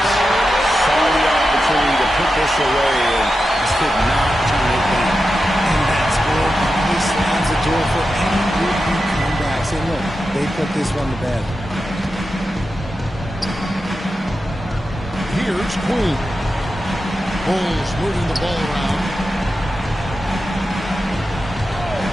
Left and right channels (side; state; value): both; normal; correlation 0.90